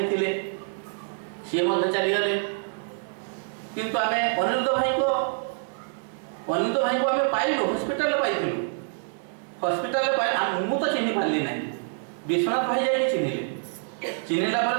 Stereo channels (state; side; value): silent; left; digital silence